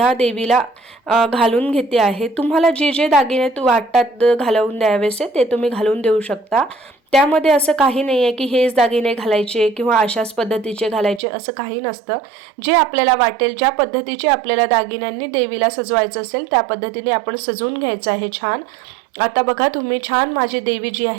देवीला घालून घेते आहे. तुम्हाला जे जे दागिने वाटतात घालवून द्यावेसे ते तुम्ही घालून देऊ शकता. त्यामध्ये असं काही नाही आहे की हेच दागिने घालायचे किंवा अशाच पद्धतीचे घालायचे, असं काही नसतं. जे आपल्याला वाटेल, ज्या पद्धतीचे आपल्याला दागिन्यांनी देवीला सजवायचं असेल त्या पद्धतीने आपण सजवून घ्यायचं आहे छान. आता बघा तुम्ही छान माझी देवी जी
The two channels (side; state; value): left; drops out; at 11.2 s